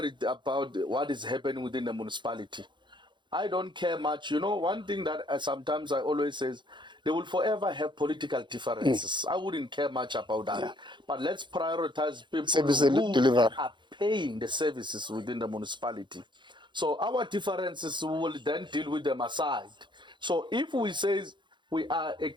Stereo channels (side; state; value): left; late; 0.23 ms